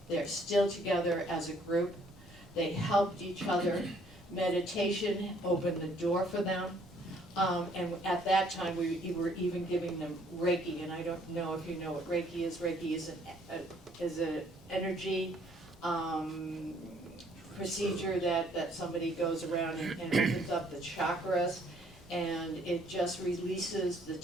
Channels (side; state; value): both; normal; correlation 0.63